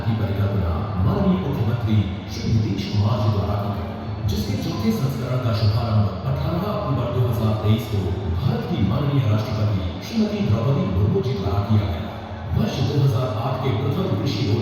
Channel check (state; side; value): identical; both; correlation 1.00